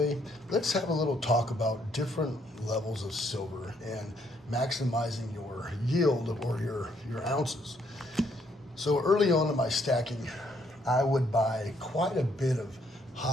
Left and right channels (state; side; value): normal; both; correlation 0.70